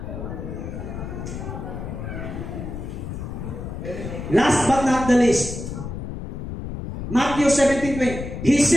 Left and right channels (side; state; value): left; noise; rumble, 7 dB below the sound